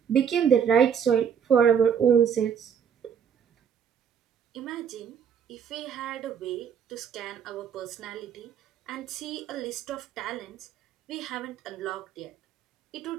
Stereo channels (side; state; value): left; quieter; 7.8 dB